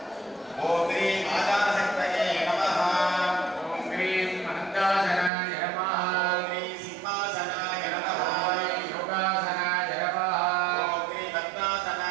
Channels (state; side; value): drops out; left; at 5.3 s